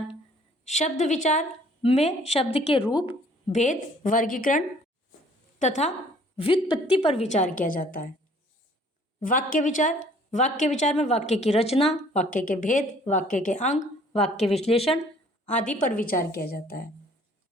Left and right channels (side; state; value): both; normal; correlation 0.57